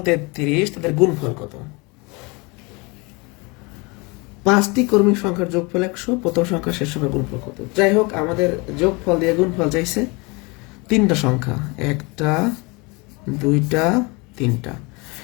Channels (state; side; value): quieter; right; 27.6 dB